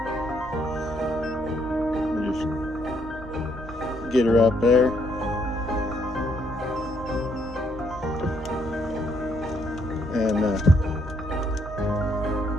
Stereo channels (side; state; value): both; normal; correlation 0.72